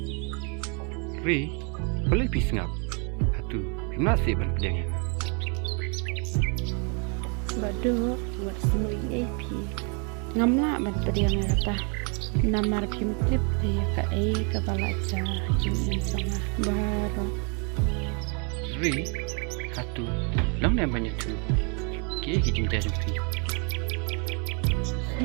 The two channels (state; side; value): quieter; left; 36.3 dB